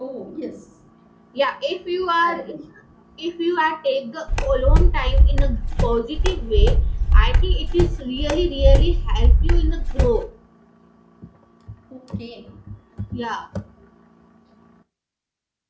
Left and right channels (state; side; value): identical; both; correlation 1.00